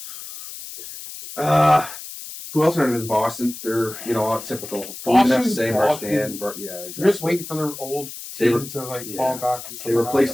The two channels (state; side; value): noise; left; hiss, 12 dB below the sound